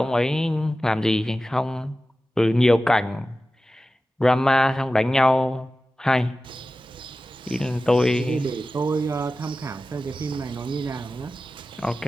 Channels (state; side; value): normal; both; correlation 0.95